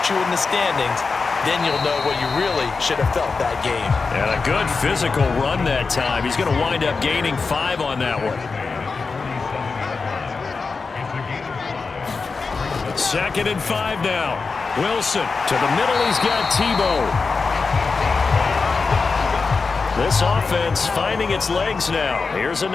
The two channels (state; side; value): quieter; right; 4.5 dB